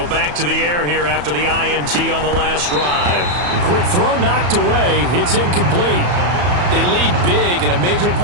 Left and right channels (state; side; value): late; left; 34 ms